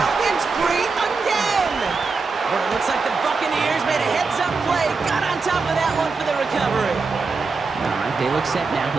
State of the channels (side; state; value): left; quieter; 4.4 dB